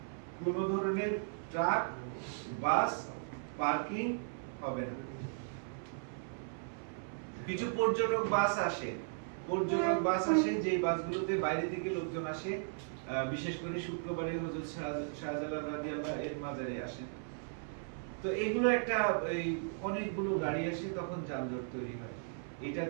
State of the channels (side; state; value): left; silent; 54 dB below the other